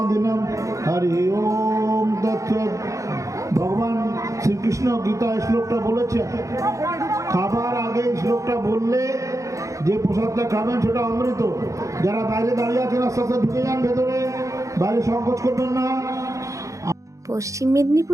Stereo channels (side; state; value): left; late; 0.15 ms